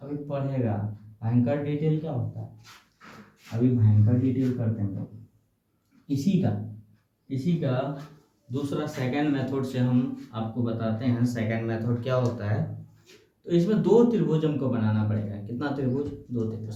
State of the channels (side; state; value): both; identical; correlation 1.00